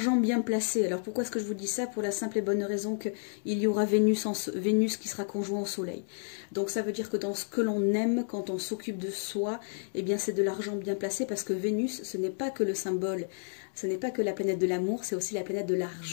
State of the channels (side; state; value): right; silent; digital silence